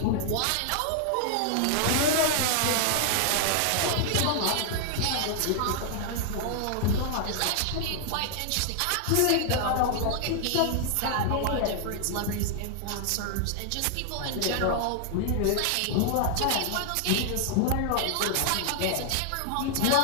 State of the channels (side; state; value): both; different; correlation 0.00